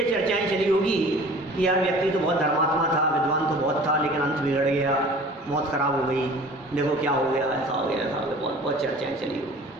चर्चाएं चली होगी कि यार व्यक्ति तो बहुत धर्मात्मा था, विद्वान तो बहुत था, लेकिन अंत बिगड़ गया, मौत खराब हो गई, देखो क्या हो गया, ऐसा हो गया, ऐसा हो गया, बहुत बहुत चर्चाएं चली होगी।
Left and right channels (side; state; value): both; normal; correlation 0.45